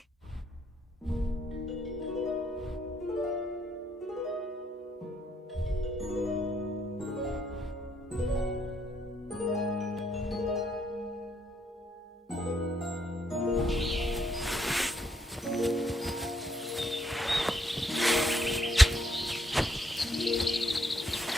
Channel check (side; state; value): both; normal; correlation 0.73